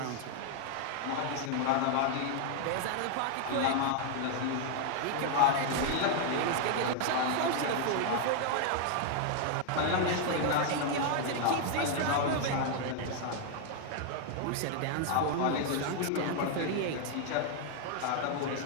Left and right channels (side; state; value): both; different; correlation 0.00